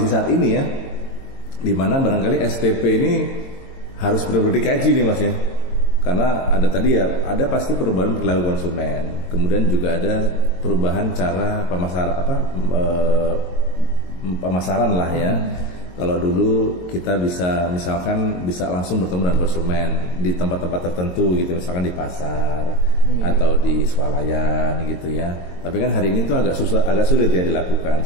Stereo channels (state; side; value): late; right; 22 ms